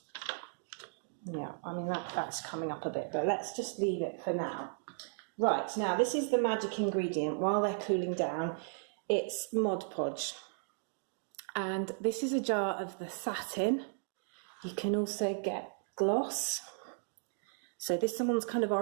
Yeah, I mean that's coming up a bit, but let's just leave it for now. Right, now this is the magic ingredient. While they're cooling down, it's Mod Podge. And this is a jar of the satin. You can also get gloss. So this one's kind of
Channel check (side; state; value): left; silent; digital silence